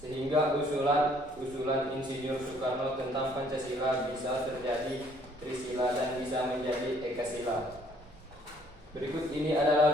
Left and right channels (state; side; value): normal; both; correlation 0.62